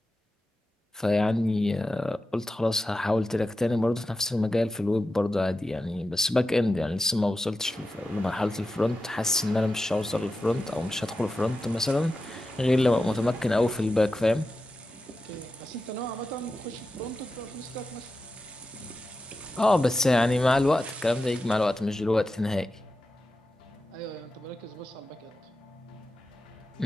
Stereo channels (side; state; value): both; normal; correlation 0.92